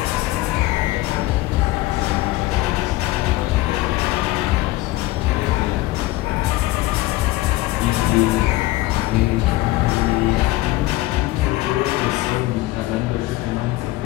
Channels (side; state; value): right; quieter; 18.2 dB